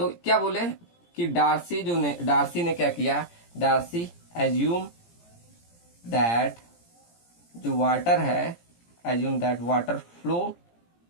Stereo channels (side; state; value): right; late; 17 ms